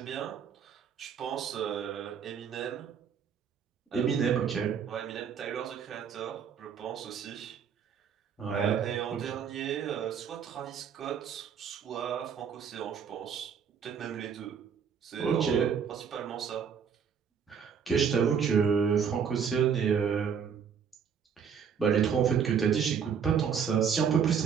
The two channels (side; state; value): left; quieter; 7.3 dB